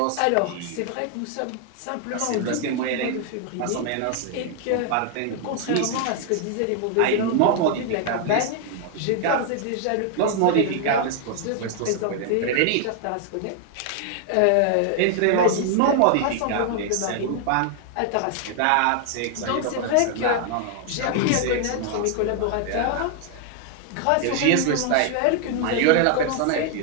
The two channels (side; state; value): both; different; correlation 0.00